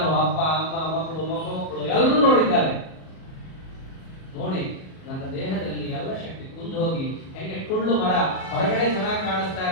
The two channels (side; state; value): right; late; 38 ms